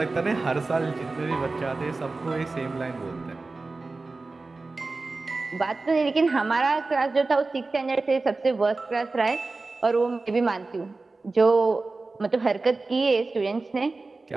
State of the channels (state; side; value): quieter; left; 3.6 dB